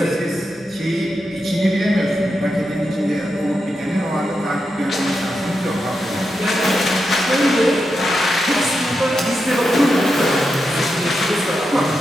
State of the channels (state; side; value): normal; both; correlation 0.87